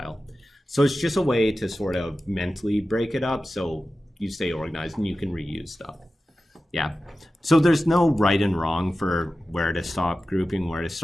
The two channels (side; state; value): both; normal; correlation 0.94